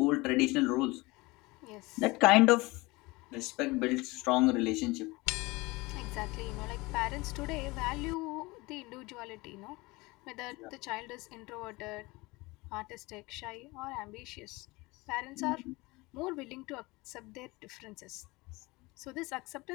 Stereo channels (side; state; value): right; quieter; 23.0 dB